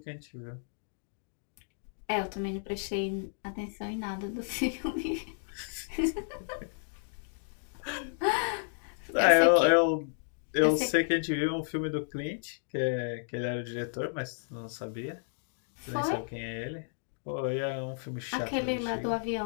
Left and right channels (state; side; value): silent; right; digital silence